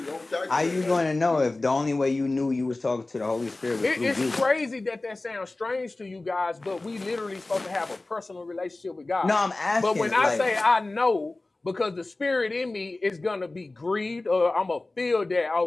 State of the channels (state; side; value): quieter; right; 3.0 dB